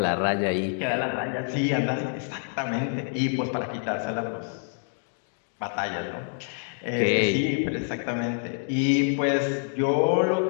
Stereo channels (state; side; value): silent; right; 56 dB below the other